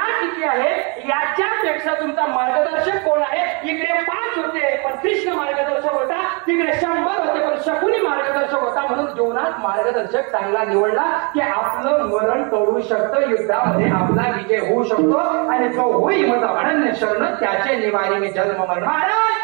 किती आहे याच्यापेक्षा तुमचा मार्गदर्शक कोण आहे? इकडे 5 होते पण कृष्ण मार्गदर्शक होता, तिकडे 100 होते पण शकुनी मार्गदर्शक होता. म्हणून जीवनात मार्गदर्शक चांगला निवडला की आपलं मरण टळू शकतं, युद्धामध्ये आपला विजय होऊ शकतो. आणि जो होई माझा अनन्य शरण त्याचे निवारी मी जन्म मरण. महाराज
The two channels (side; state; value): left; quieter; 33.5 dB